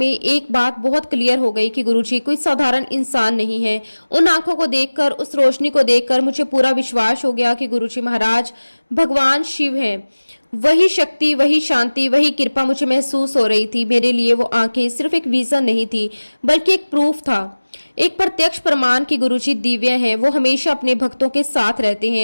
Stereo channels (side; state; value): both; inverted; correlation -1.00